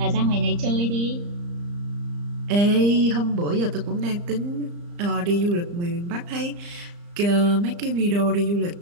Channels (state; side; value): late; left; 34 ms